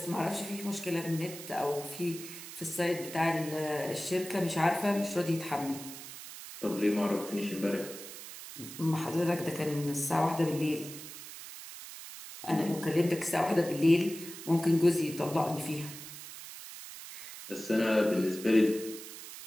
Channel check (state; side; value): noise; right; hiss, 12 dB below the sound